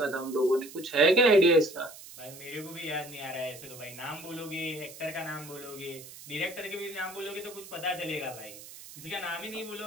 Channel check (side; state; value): right; noise; hiss, 16 dB below the sound